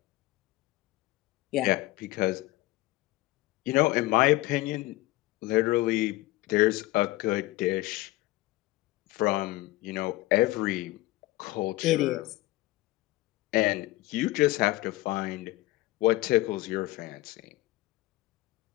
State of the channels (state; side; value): quieter; right; 18.2 dB